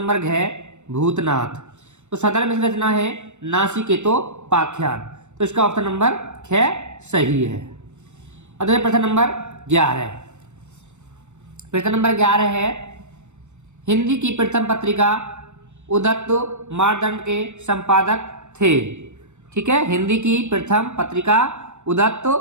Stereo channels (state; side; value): late; left; 0.84 ms